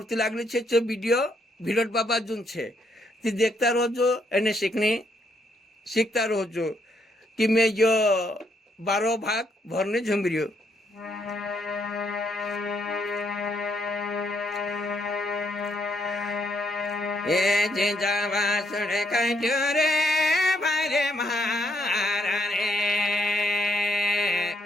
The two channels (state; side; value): normal; both; correlation 0.74